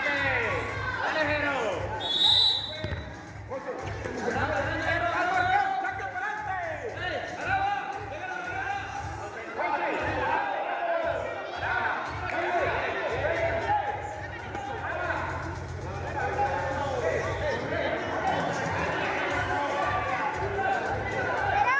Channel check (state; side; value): identical; both; correlation 1.00